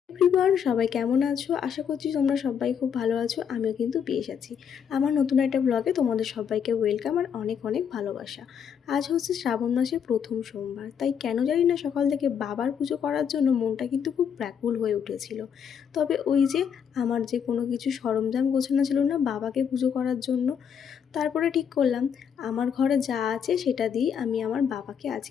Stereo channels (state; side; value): quieter; right; 7.7 dB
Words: Everyone, সবাই কেমন আছো? আশা করছি তোমরা সবাই খুব ভালো আছো। আমিও কিন্তু বেশ আছি। আমার নতুন একটা ব্লগে তোমাদের সবাইকে ওয়েলকাম আর অনেক অনেক ভালোবাসা। আজ হচ্ছে শ্রাবণ মাসের প্রথম সোমবার, তাই কেন জানি না সকাল থেকে বাবার পুজো করার জন্য মনটা কিন্তু খুব ব্যাকুল হয়ে উঠেছিল। তবে ওই যে আমার যে কোনো কিছু সরঞ্জাম গোছানো ছিল না বাবাকে পুজো করার জন্য, তারপরে ঠিক করলাম আমার ঘরে যা আছে সেটা দিয়েই আমি আমার বাবাকে